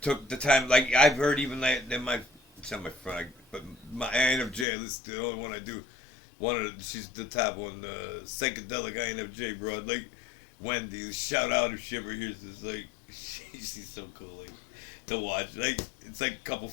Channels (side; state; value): right; drops out; at 4.7 s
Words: took the time. Like, I've heard even like it's not my friend, but my INFJ. This is the only one I do. She's the top one, the psychedelic INFJ broad. Like, Wendy, shout out if she ever hears this. Like, she's so cool, like, to watch. Like, it's like a couple